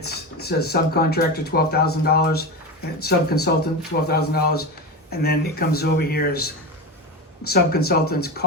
says subcontractor $12,000, and subconsultant $12,000, and then it comes over here as subconsultant's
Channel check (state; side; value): normal; both; correlation 0.22